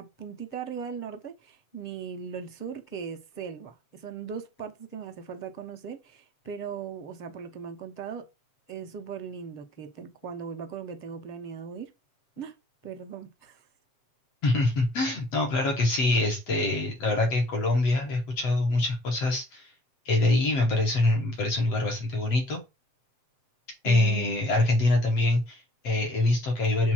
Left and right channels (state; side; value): late; right; 7.6 ms